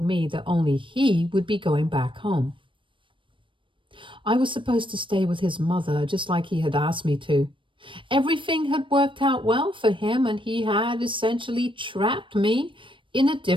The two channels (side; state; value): left; late; 0.25 ms